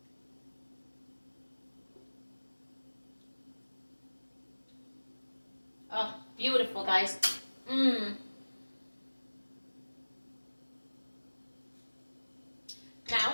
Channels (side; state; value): both; inverted; correlation -1.00